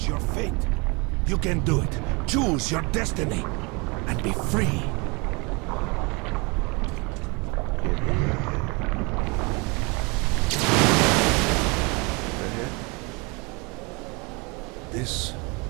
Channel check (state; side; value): quieter; left; 28.9 dB